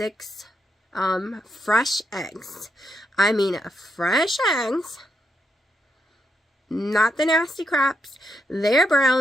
fresh eggs. I mean, fresh eggs. Not the nasty craps. They're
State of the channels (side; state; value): both; normal; correlation 0.80